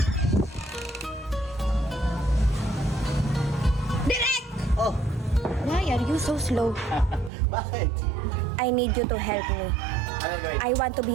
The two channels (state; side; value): drops out; left; at 7.3 s